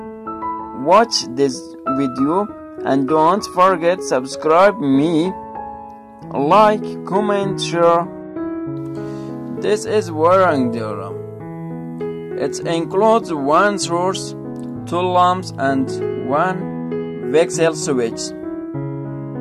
watch this video and don't forget subscribe me, like, comment, share. This is wiring diagram. It includes one source, two lamps and one voxel switch.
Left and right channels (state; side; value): identical; both; correlation 1.00